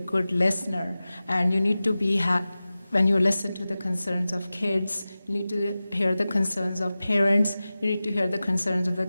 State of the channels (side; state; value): both; inverted; correlation -0.96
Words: listener, and you need to be when you listen to the concerns of kids, you need to hear the concerns of parents, you need to hear the concerns of the